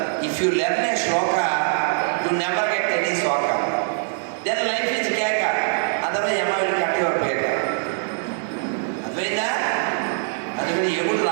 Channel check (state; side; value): silent; left; 64 dB below the other